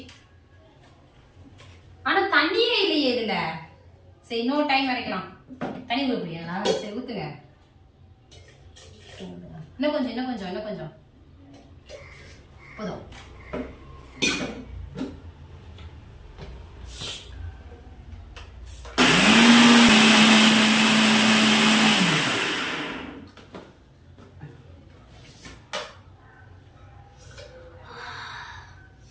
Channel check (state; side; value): identical; both; correlation 1.00